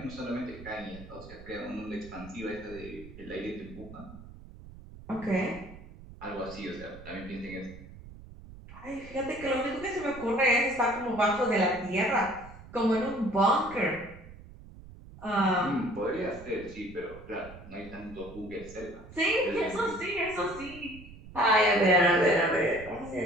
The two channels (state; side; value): noise; right; rumble, 17 dB below the sound